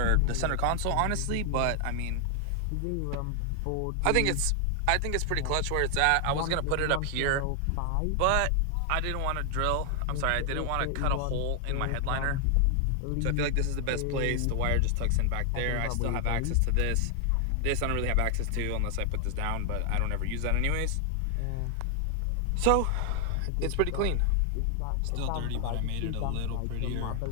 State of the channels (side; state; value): both; different; correlation 0.00